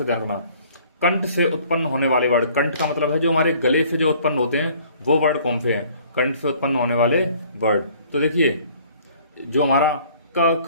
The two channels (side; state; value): both; inverted; correlation -0.56